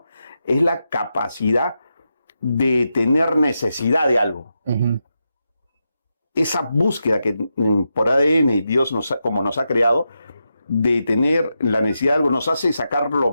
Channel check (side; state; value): both; inverted; correlation -0.87